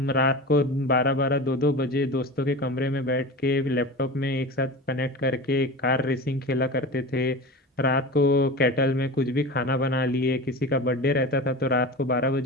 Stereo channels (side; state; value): both; normal; correlation 0.30